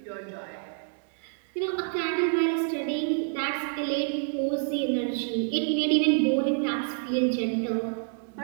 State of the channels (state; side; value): silent; left; digital silence